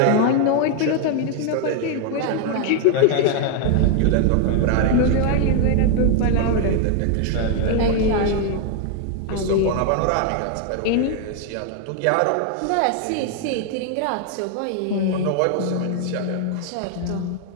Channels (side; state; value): both; different; correlation 0.00